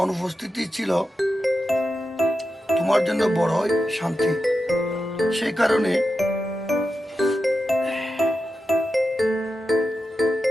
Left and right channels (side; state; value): both; normal; correlation 0.90